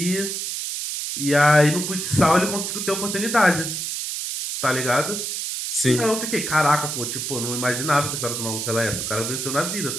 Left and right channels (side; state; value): right; noise; hiss, 4 dB below the sound